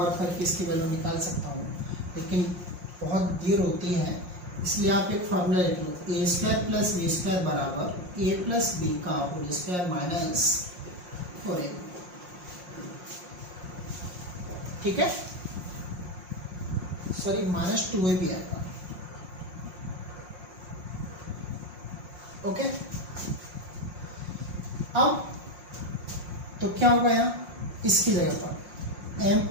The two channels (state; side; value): late; left; 5.6 ms